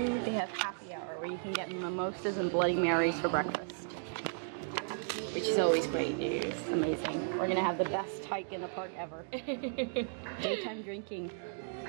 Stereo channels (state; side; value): silent; left; digital silence